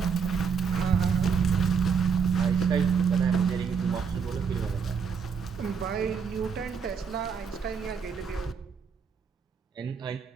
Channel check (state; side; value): quieter; left; 6.2 dB